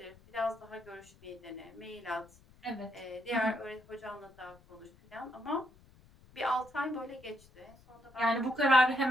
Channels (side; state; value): left; noise; rumble, 26 dB below the sound